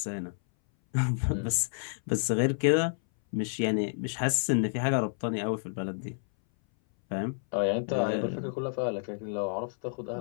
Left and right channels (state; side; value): silent; right; 58 dB below the other